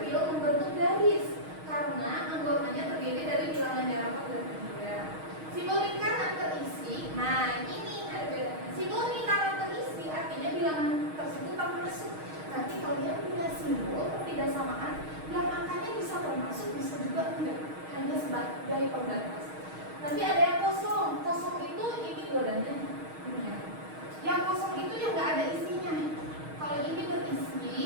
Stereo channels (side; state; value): left; late; 6.4 ms